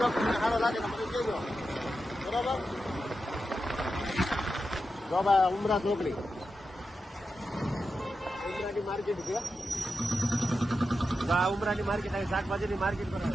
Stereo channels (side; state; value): both; normal; correlation 0.90